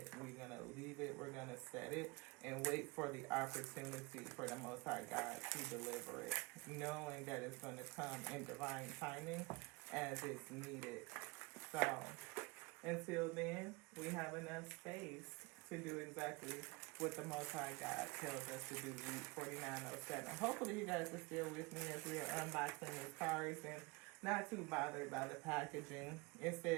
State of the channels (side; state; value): left; quieter; 26.3 dB